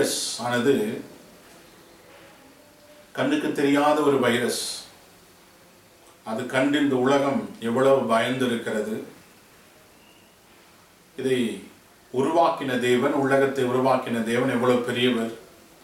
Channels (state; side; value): identical; both; correlation 1.00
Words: ஆனது கண்ணுக்கு தெரியாத ஒரு வைரஸ். அது கண்டு இந்த உலகம் எவ்வளவு பயந்து இருக்கிறது. இதை உருவாக்கின தேவன், உலகத்தை உருவாக்கின தேவன் எவ்வளவு பெரியவர்.